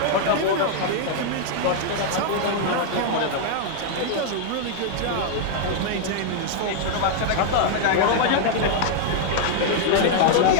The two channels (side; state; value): both; different; correlation 0.00